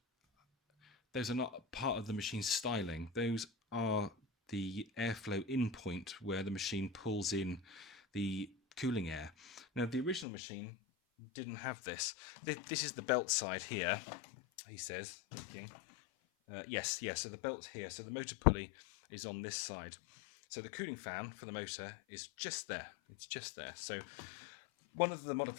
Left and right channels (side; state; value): right; drops out; at 10.2 s